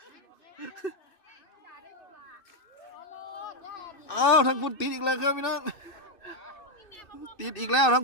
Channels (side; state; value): right; late; 2.6 ms